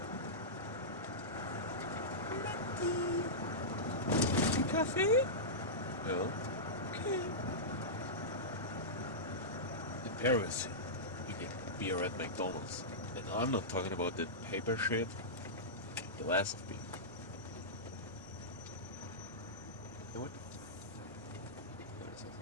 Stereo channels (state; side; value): normal; both; correlation -0.15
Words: Kaffee? Ja. Okay. In Paris, you get beer at McDonald's. And I'm not talking about the paper shit. Glass of beer. Ja, what?